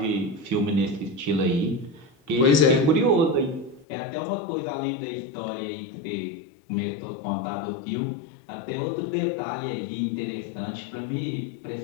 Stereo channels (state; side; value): drops out; right; at 3.9 s